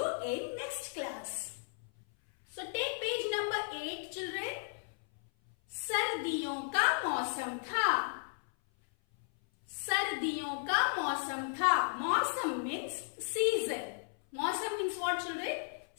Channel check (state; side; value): silent; right; 55 dB below the other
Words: in next class. So take page number 8 children. सर्दियों का मौसम था. सर्दियों का मौसम था. मौसम means season. Mausam means what children?